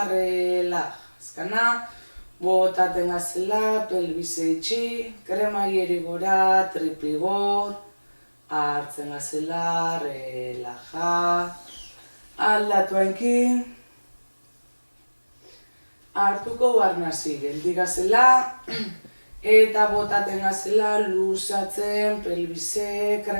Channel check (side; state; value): both; inverted; correlation -1.00